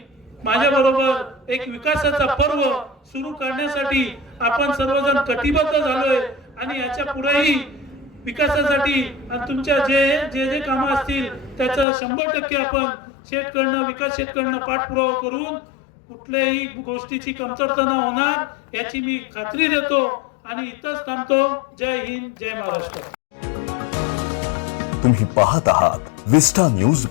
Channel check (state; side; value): drops out; right; at 11.9 s